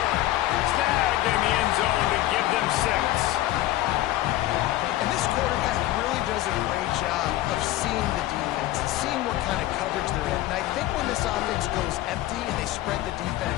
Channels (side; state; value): right; quieter; 15.5 dB